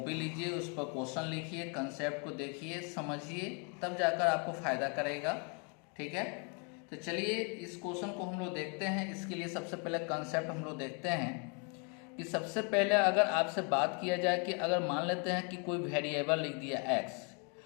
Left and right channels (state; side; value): quieter; right; 36.5 dB